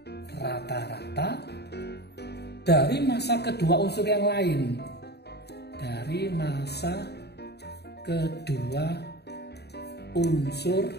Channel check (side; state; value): right; late; 0.48 ms